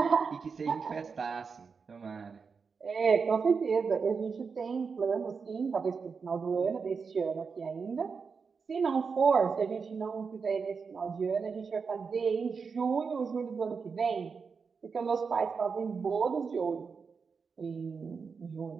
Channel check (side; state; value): left; quieter; 5.4 dB